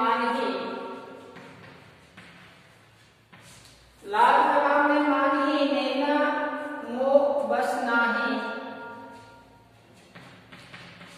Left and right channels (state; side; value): identical; both; correlation 1.00